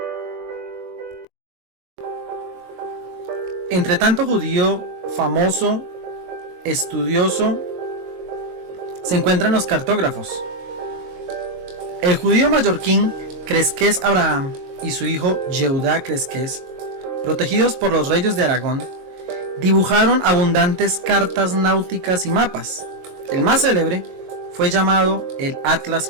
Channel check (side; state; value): left; late; 22 ms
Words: Entre tanto judío famoso, estudioso, se encuentran los cartógrafos. El judío mallorquín Cresques Abraham y su hijo Yehudá Cresques, protegidos por los reyes de Aragón, dibujaron abundantes cartas náuticas y mapas. El más célebre fue llamado el Atlas